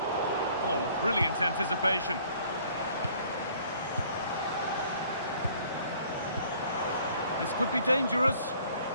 Oh, brilliant anticipation. This could be dangerous.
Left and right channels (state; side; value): inverted; both; correlation -0.57